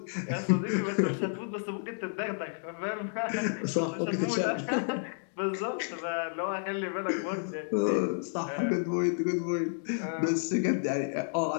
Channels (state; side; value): silent; right; digital silence